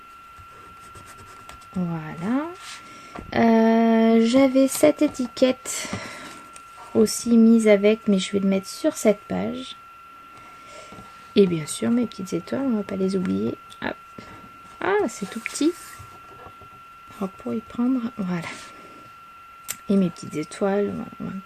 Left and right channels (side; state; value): both; identical; correlation 1.00